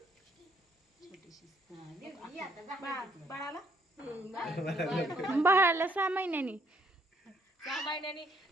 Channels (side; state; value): both; normal; correlation 0.68